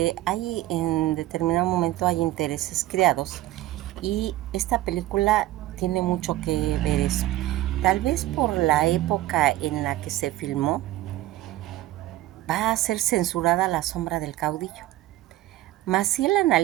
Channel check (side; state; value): left; quieter; 15.7 dB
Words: hay en determinado momento hay intereses creados y esta película tiene mucho que ver eso. Tal vez por la época en la que se filmó va a ser censurada La sombra del caudillo. Maciel